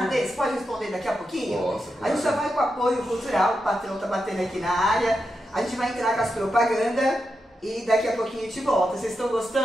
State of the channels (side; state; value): both; normal; correlation 0.87